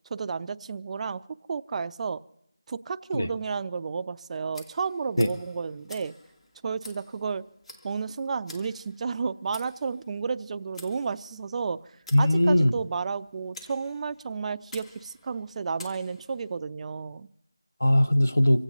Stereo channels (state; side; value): inverted; both; correlation -0.93